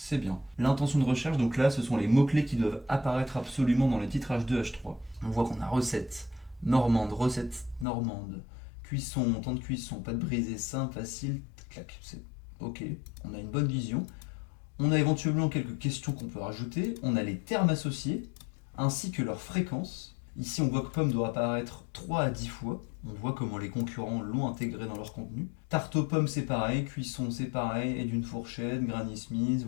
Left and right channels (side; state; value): right; drops out; at 7.9 s